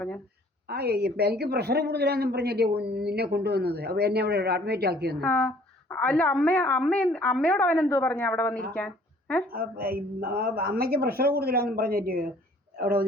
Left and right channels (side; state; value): both; normal; correlation 0.56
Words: എനിക്ക് പ്രഷർ കൂടുതലാണെന്നും പറഞ്ഞല്ലേ നിന്നെ കൊണ്ടുവന്നത്. അപ്പൊ എന്നെ അവിടെ അഡ്മിറ്റ് ആക്കിയെന്ന്. അല്ല അമ്മയോട് അവൻ എന്തോ പറഞ്ഞു അവിടെ വന്നിരിക്കാൻ? അമ്മയ്ക്ക് പ്രഷർ കൂടുതലാണെന്നും പറഞ്ഞിട്ട് അവിടെ